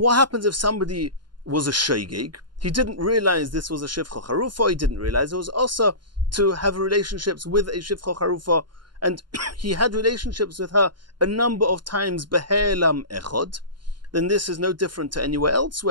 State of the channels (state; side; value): late; left; 0.71 ms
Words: happens if somebody was a shaygig? He didn't realize this was a Shifcha Charufa, he didn't realize it was also to have relationships with a Shifcha Charufa, and he had relationships with her a number of times behelam echod. Then this is no different to anywhere else